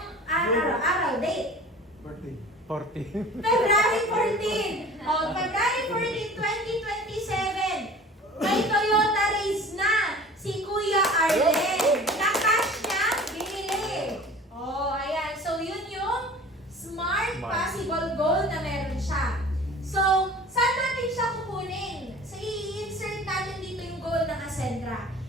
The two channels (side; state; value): both; normal; correlation 0.43